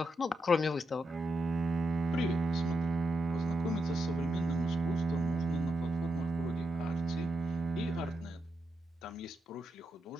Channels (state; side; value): normal; both; correlation 0.83